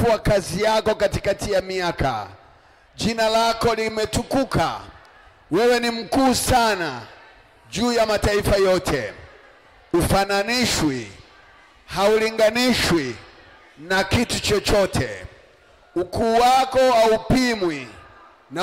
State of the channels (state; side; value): identical; both; correlation 1.00